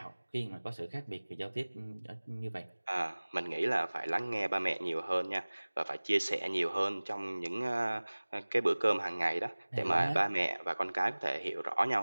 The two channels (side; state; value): both; inverted; correlation -1.00